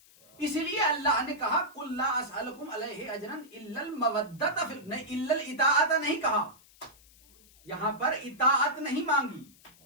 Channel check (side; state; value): left; noise; hiss, 26 dB below the sound